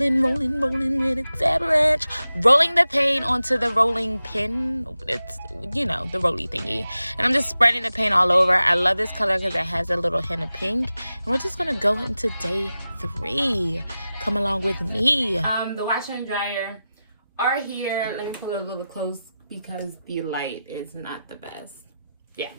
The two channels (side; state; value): both; inverted; correlation -0.93